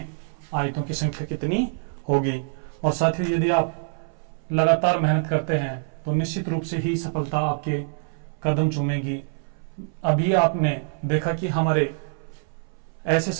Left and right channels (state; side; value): silent; left; 61 dB below the other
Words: आयतों की संख्या कितनी होगी। और साथियों यदि आप लगातार मेहनत करते हैं तो निश्चित रूप से ही सफलता आपके कदम चूमेगी। अभी आपने देखा कि हमारे ऐसे